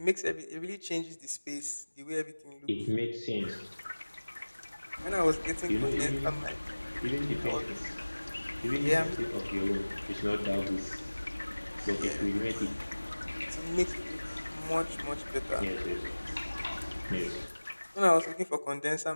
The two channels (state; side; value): inverted; both; correlation -1.00